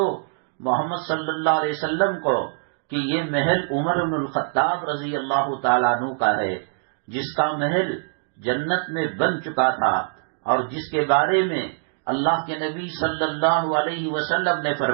محمد صلی اللہ علیہ وسلم کو کہ یہ محل عمر بن الخطاب رضی اللہ تعالیٰ عنہ کا ہے، جس کا محل جنت میں بن چکا تھا اور جس کے بارے میں اللہ کے نبی صلی اللہ علیہ وسلم نے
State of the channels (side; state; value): left; silent; digital silence